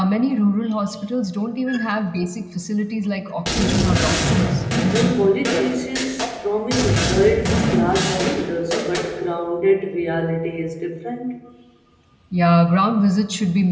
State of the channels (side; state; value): both; identical; correlation 1.00